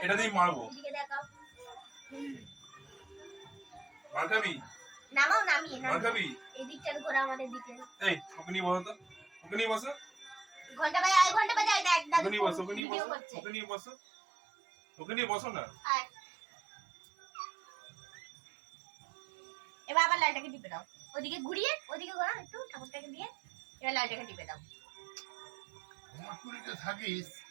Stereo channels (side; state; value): left; drops out; at 12.8 s